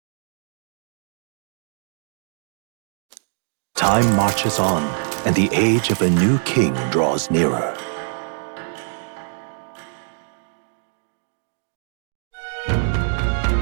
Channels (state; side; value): silent; left; digital silence